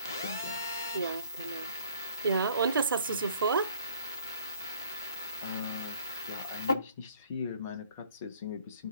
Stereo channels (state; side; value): inverted; both; correlation -0.57